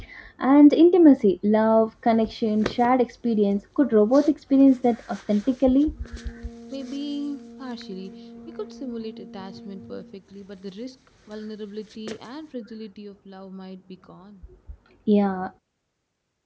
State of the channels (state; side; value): identical; both; correlation 1.00